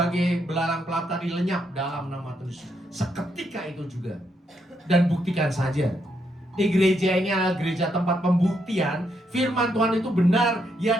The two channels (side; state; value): both; normal; correlation 0.78